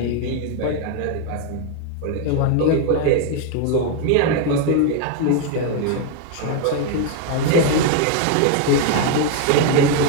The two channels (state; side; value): different; both; correlation 0.01